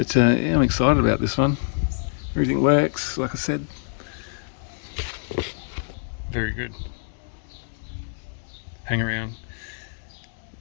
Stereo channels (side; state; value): right; silent; digital silence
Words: yeah, I'm excited about this one. Everything works, like I said. Very good. Hang around.